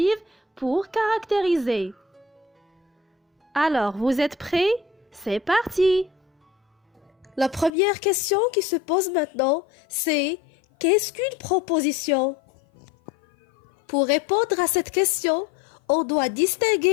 pour caractériser. Alors, vous êtes prêts? C'est parti! La première question qui se pose maintenant, c'est qu'est-ce qu'une proposition? Pour répondre à cette question, on doit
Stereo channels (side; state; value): right; drops out; at 7.7 s